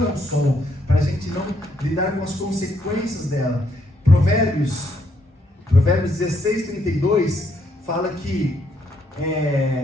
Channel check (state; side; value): normal; both; correlation 0.73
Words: ao sol, para a gente não lidar com as consequências dela. Provérbios 16:32 fala que